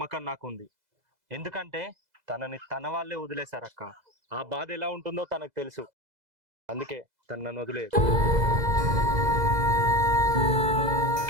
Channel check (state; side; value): late; left; 2.0 ms